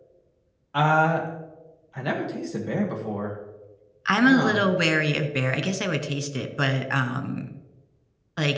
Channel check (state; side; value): identical; both; correlation 1.00